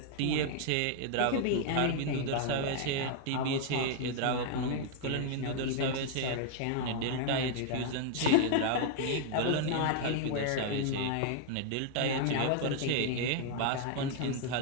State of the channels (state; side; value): different; both; correlation 0.00